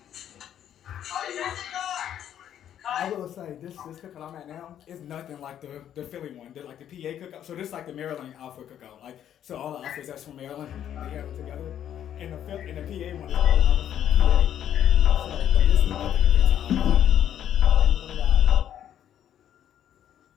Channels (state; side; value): quieter; right; 10.3 dB